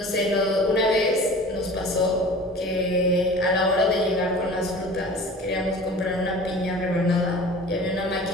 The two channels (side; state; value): both; normal; correlation 0.41